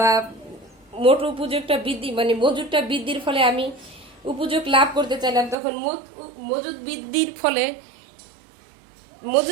মোট উপযোগটা বৃদ্ধি মজুদটা বৃদ্ধির ফলে আমি উপযোগ লাভ করতে চাইলাম, তখন মজুদ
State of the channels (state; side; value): drops out; left; at 5.6 s